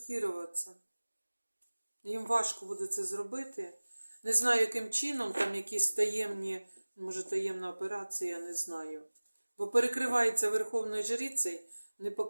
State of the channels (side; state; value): both; inverted; correlation -1.00